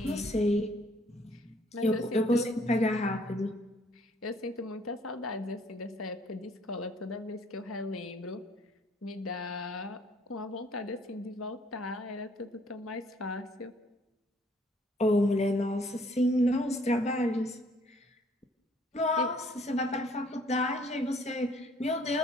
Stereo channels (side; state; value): both; normal; correlation 0.62